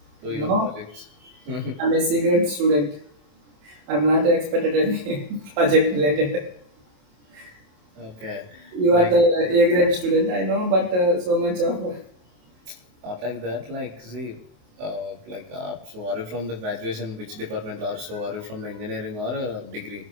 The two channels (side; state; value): left; late; 27 ms